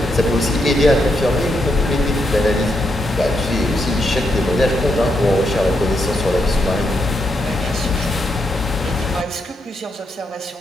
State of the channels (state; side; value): normal; both; correlation 0.80